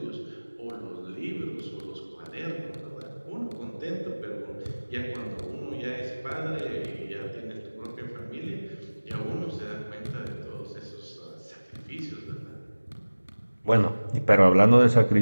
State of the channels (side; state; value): both; inverted; correlation -1.00